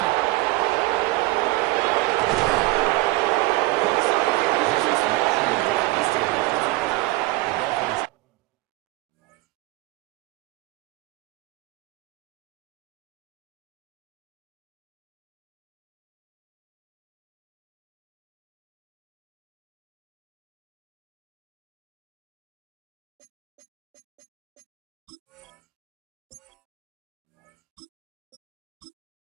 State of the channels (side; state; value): left; quieter; 19.8 dB